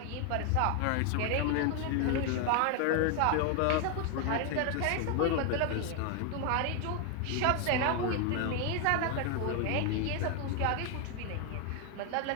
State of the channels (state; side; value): different; both; correlation 0.01